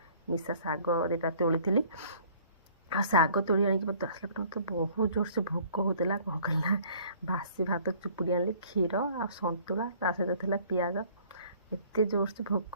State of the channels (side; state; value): both; inverted; correlation -0.55